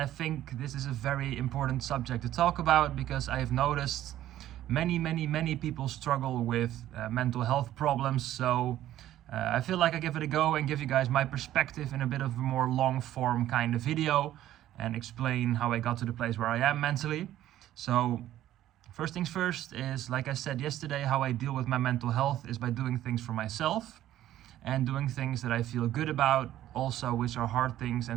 think this is a very important subject to talk about because I've noticed many people struggle with mental health problems. So I feel like I give it a go and give you guys my perspective in a bit of a more long form kind of video and explain how I got to the place where I am mentally. So first things first is, like I said yesterday, how I deal with my mental health is by doing things for myself and doing things that I feel good about, also which are hard things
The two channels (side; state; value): left; quieter; 13.1 dB